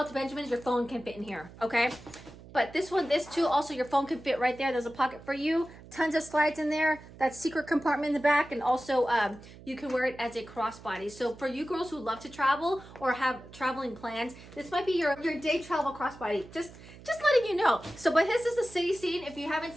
the Benjamins, your phone can fit in here, okay? But this one, this too, also your phone can fit right there. There's a pocket for you, tons of slides in there, that secret compartment in the back, and also you can wear it as a crossbody. So for you girls who love to travel or have traveling plans, this might be your day travel crossbody. Just letting you know. So, but this is the City Scene. If you haven't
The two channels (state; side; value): noise; right; hum, 19 dB below the sound